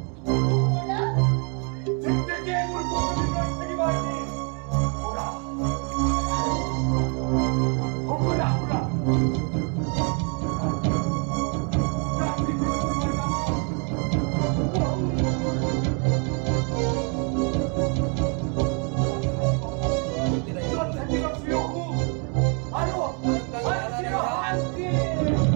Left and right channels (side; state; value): left; quieter; 37.4 dB